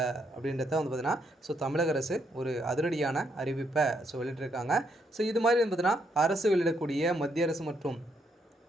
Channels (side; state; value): both; normal; correlation 0.75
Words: அப்படின்றத வந்து பார்த்தீங்கன்னா, தமிழக அரசு ஒரு அதிரடியான அறிவிப்பை வெளியிட்டிருக்காங்க. இது மாதிரி வந்து பார்த்தீங்கன்னா, அரசு வெளியிடக்கூடிய மத்திய அரசு மற்றும்